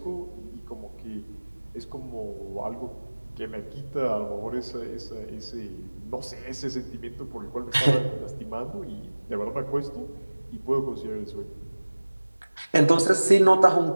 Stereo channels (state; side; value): inverted; both; correlation -1.00